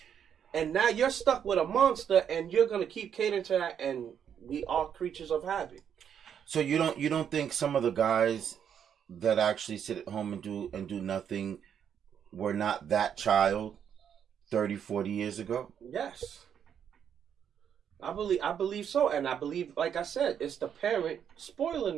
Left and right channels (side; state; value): left; quieter; 8.4 dB